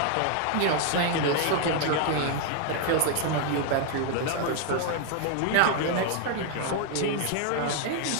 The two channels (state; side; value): different; both; correlation 0.00